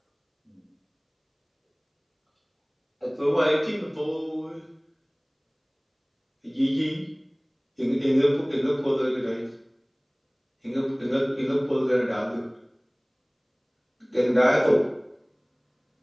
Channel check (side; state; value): both; identical; correlation 1.00